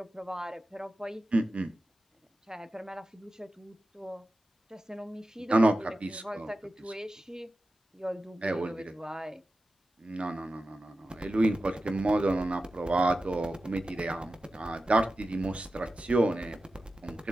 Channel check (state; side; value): normal; both; correlation 0.93